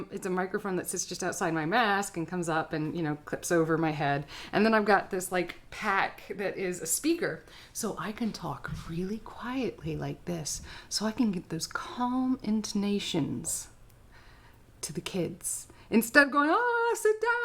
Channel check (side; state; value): both; identical; correlation 1.00